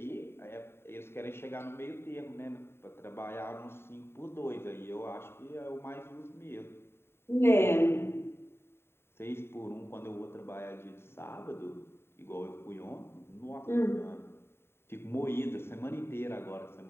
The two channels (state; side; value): late; right; 0.11 ms